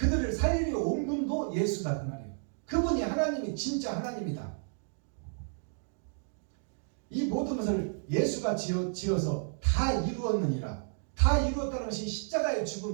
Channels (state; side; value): silent; left; digital silence